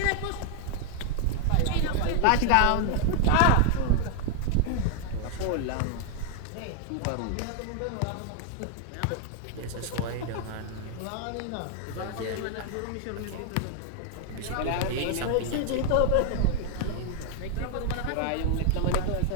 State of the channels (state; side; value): different; both; correlation 0.00